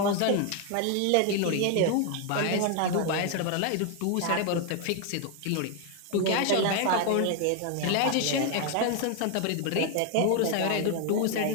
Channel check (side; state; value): both; different; correlation 0.01